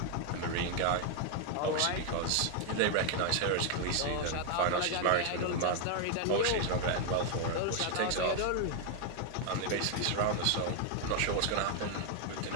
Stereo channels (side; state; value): both; different; correlation 0.00